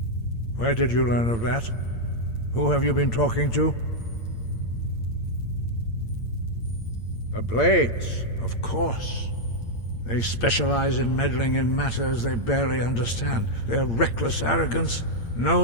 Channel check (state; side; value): late; right; 8.8 ms